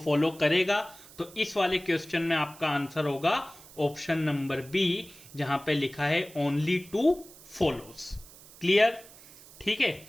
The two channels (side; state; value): right; noise; hiss, 21 dB below the sound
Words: करेगा। तो इस वाले क्वेश्चन में आपका आंसर होगा ऑप्शन नंबर बी, जहां पे लिखा है ओनली टू फॉलोज। क्लियर, ठीक है,